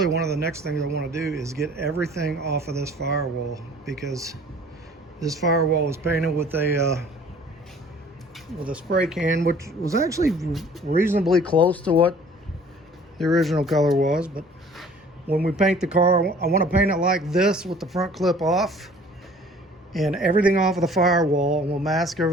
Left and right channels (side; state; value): both; normal; correlation 0.51